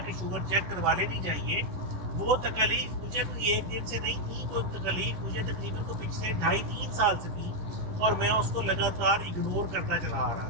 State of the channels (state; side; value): late; left; 11 ms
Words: کہ شوگر چیک کروا لینی چاہیے، وہ تکالیف مجھے کوئی ایک دن سے نہیں تھی، وہ تکالیف مجھے تقریباً تو پچھلے 2.5-3 سال سے تھی، اور میں اس کو لگاتار اگنور کرتا چلا آ رہا